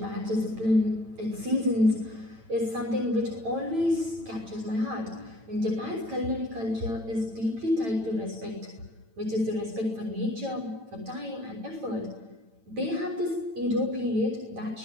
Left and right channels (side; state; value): left; late; 9.0 ms